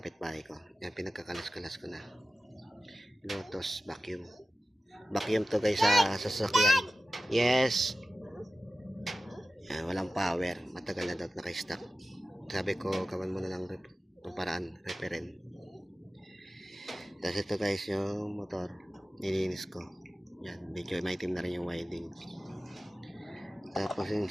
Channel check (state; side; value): normal; both; correlation 0.95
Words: ko. Yan, pinagkakalas-kalas ko na. Lotus vacuum. Vacuum to guys sa sasakyan. Yes. Yan, walang power. Matagal na daw naka-stock. Sabi ko, gawan mo na lang paraan, referent. Tapos ito guys, yung motor, nilinis ko. Yan, medyo maitim na rin yung winding. Tapos yung